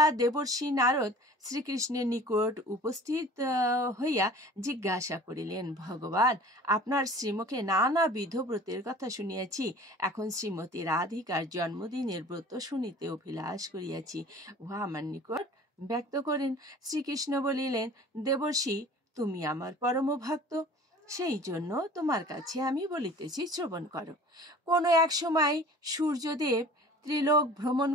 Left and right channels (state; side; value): normal; both; correlation 0.45